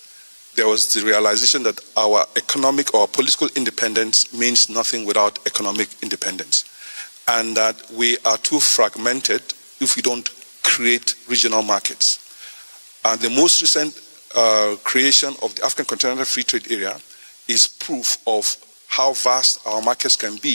there was the realization that our economic or political independence means nothing without economic independence, and that we are too fragmented if we don't create regional markets. And the most recent creation of the African Continental Free Trade Area is proof of how vast our markets can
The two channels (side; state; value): both; inverted; correlation -1.00